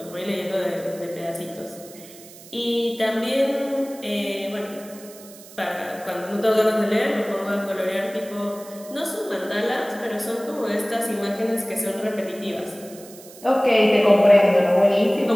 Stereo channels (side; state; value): right; noise; hiss, 19 dB below the sound